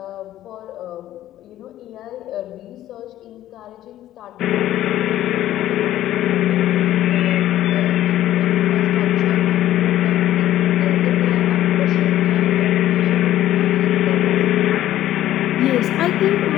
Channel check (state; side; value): quieter; right; 13.3 dB